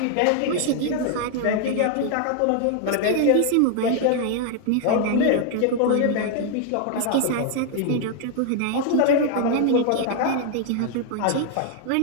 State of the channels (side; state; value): both; different; correlation 0.00